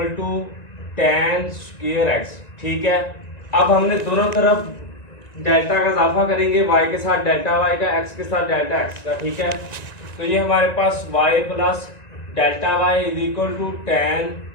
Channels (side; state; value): right; late; 1.9 ms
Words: to tan square x। ठीक है, अब हमने दोनों तरफ डेल्टा का इजाफा करेंगे, y के साथ डेल्टा y का, x के साथ डेल्टा x का। ठीक है, तो ये हमारे पास y plus delta Y is equal to ten